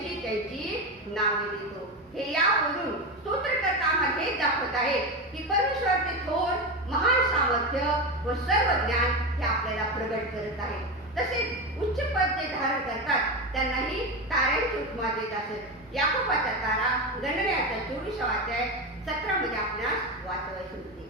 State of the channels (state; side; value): normal; both; correlation 0.18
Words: त्यांची नावे देतो. हे यावरून स्तोत्रकर्ता आम्हाला हेच दाखवत आहे की परमेश्वराचे थोर महान सामर्थ्य व सर्व ज्ञान हे आपल्याला प्रगट करत आहे. तसेच उच्च पद जे धारण करतात त्यांनाही ताऱ्यांची उपमा देत असत. याकोबाचा तारा गणनेचा 24वा अध्याय 17 मध्ये आपणास वाचवायचे होते.